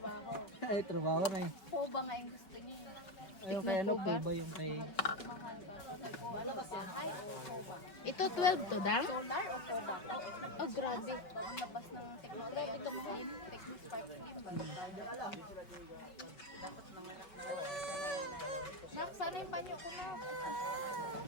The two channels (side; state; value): right; late; 5.3 ms